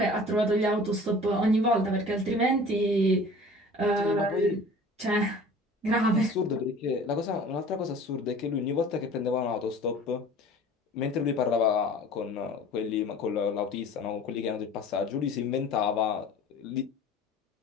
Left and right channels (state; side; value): normal; both; correlation 0.44